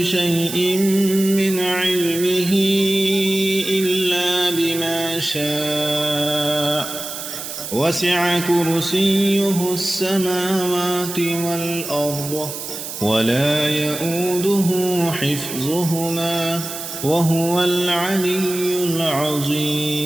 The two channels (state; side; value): noise; right; hiss, 8 dB below the sound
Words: من علمه إلا بما شاء وسع كرسيه السماوات والأرض ولا يؤوده حفظهما وهو العلي